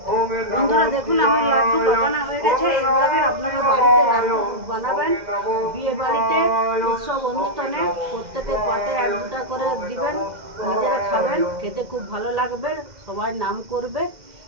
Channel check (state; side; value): late; left; 2.0 ms